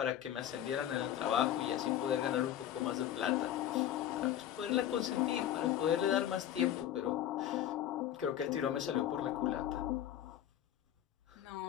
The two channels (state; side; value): quieter; right; 11.3 dB